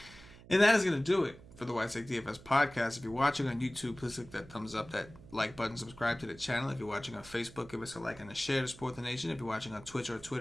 And that is gonna do it for the White Sox DFS podcast. If you're watching on YouTube, please click that thumbs up, that like button, subscribe to the channel. If you're watching on Facebook, give us a like and a share to support the nation. If you're watching on Twitch or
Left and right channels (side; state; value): right; noise; hum, 20 dB below the sound